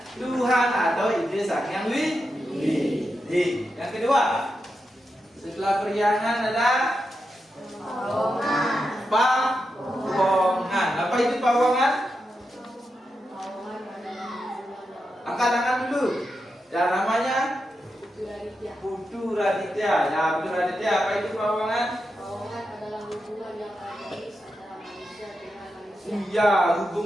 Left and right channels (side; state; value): both; normal; correlation 0.88